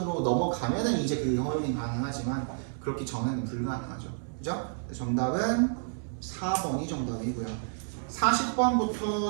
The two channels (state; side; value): silent; left; 58 dB below the other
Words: 넘어가면은 이제 그 허용이 가능하지만 그렇기 전에는 불가능하죠. 그죠? 정답은 4번이 정답이고요.